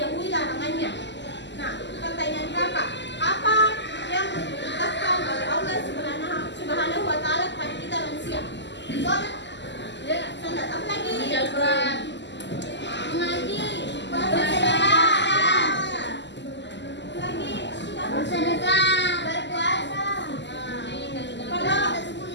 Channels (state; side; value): late; right; 0.51 ms